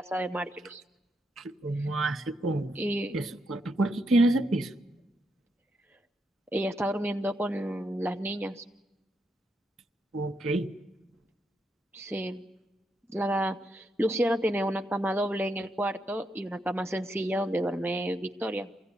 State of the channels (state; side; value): normal; both; correlation 0.81